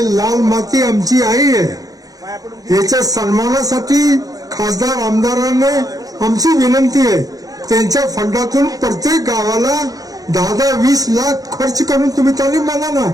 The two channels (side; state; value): left; late; 0.17 ms